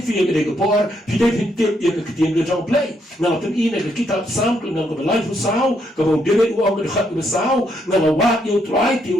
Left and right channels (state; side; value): normal; both; correlation 0.75